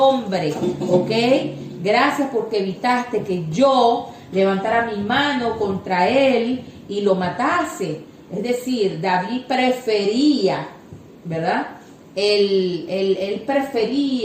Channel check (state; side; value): identical; both; correlation 1.00